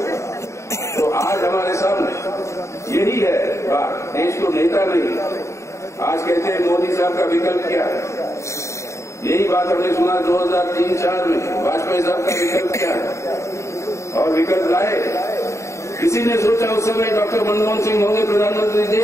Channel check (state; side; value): late; right; 0.14 ms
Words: तो आज हमारे सामने यही है बात, देश को नेता नहीं। आज कहते हैं मोदी साहब का विकल्प क्या है, यही बात हमने सुना 2003-4 में, वाजपेयी साहब का विकल्प क्या है, और विकल्प लाए। किसी ने सोचा उस समय डॉक्टर मनमोहन सिंह होंगे प्रधानमंत्री